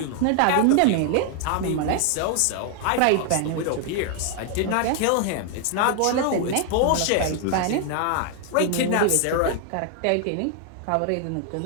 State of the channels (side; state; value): both; different; correlation 0.00